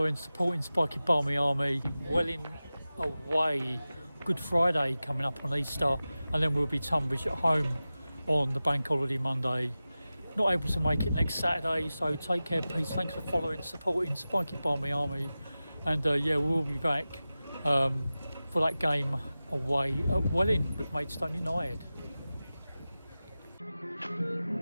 supporting Spiky Barmy Army. Welling away. Good Friday coming up on Easter. And then we'll be Tunbridge at home on the bank holiday Monday. Not able to make it next Saturday, so take care, peace. Thanks for following, supporting Spiky Barmy Army. And yeah, we'll be back for that game away at Welling with Maidstone United.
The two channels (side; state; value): both; inverted; correlation -0.95